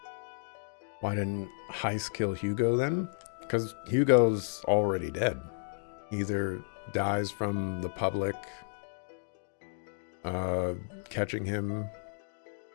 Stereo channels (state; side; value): silent; right; digital silence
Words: Why didn't Heist kill Hugo then? Because Hugo's already dead. Either dies from the public catching him